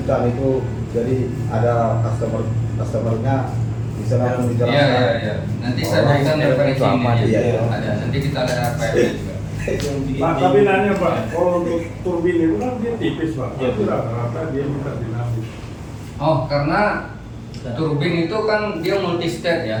kan itu, jadi ada customernya bisa langsung Iya, dijelaskan. iya, iya. Nanti saya Oh, berikan referensi itu apa? ini. Iya, Ya. iya. Ada. Nanti kita ada RPM juga. Pak, tapi nanya Pak, kalau untuk turbin itu kan dia tipis Pak, Iya, tapi rata-rata dia minta dinamis. Oh, karena turbin itu kan dia multi state ya.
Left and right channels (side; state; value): both; identical; correlation 1.00